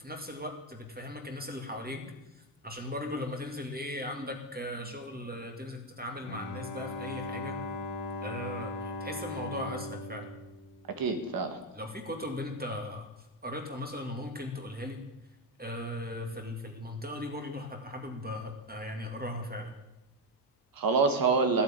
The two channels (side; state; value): both; normal; correlation 0.06